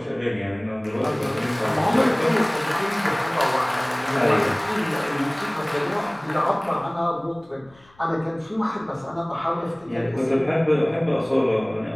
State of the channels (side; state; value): left; noise; rumble, 29 dB below the sound